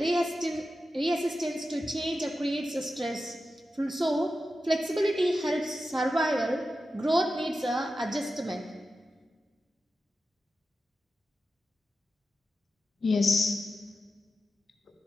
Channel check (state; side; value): normal; both; correlation 0.91